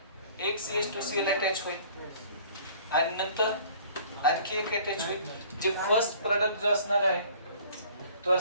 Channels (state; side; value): inverted; both; correlation -0.52